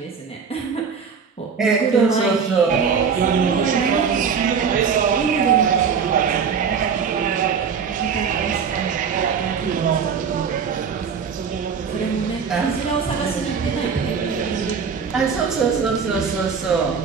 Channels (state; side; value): quieter; left; 6.2 dB